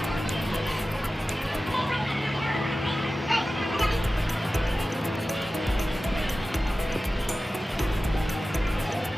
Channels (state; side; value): normal; both; correlation 0.95